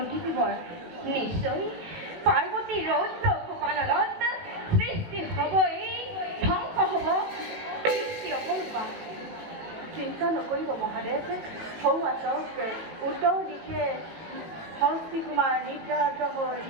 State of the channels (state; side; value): late; left; 18 ms